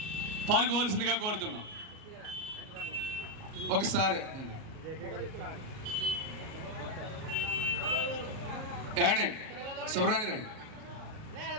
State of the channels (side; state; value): left; late; 38 ms